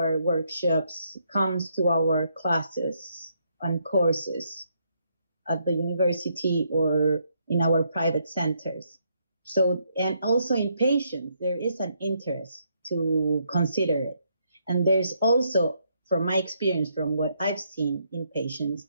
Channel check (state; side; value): inverted; both; correlation -0.74